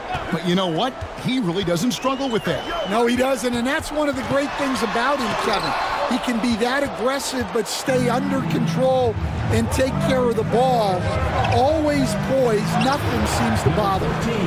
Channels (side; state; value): both; identical; correlation 1.00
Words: But you know what? He really doesn't struggle with that. No, he doesn't. And that's one of the great things about him, Kevin. He can be that aggressive but stay under control and take care of the ball. Always poised. Nothing seems to bother